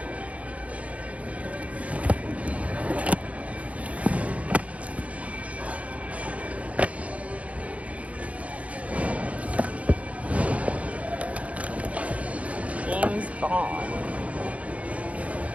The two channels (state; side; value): late; left; 0.066 ms